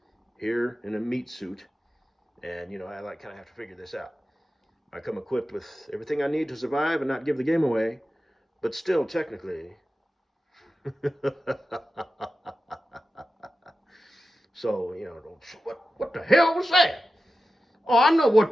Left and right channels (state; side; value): normal; both; correlation 0.93